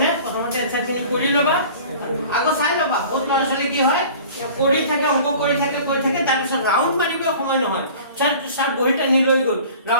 প্ৰথমতে এনসাৰখিনি কৰি লবা আগো চাই লবা বহুত ল'ৰা-ছোৱালী কি হয় কৰি থাকে অংক কৰি থাকে তাৰ পিছত ৰাউন্ড মাৰিব সময় নহয় স্যাৰ বহিটা নি লৈ গল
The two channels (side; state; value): both; inverted; correlation -0.44